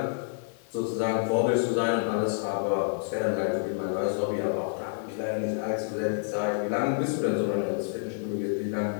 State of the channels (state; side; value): silent; right; 59 dB below the other